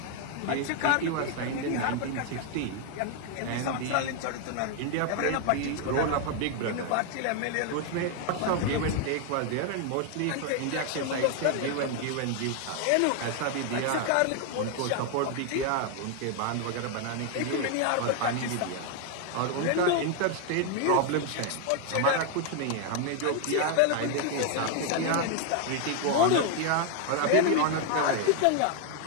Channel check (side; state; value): both; different; correlation 0.00